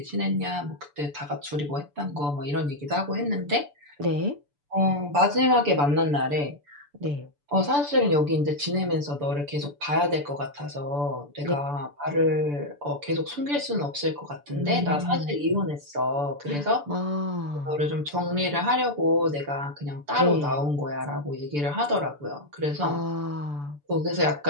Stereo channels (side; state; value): left; late; 6.9 ms